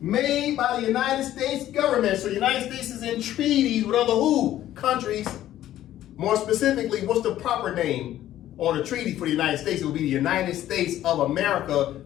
by the United States government. So the United States is in treaties with other who? Countries. More specifically, what's the proper name on a treaty for the United States? It will be the United States of America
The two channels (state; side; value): quieter; right; 12.9 dB